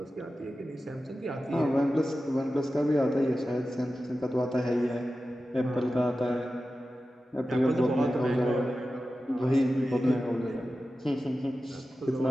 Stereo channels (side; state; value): both; normal; correlation 0.93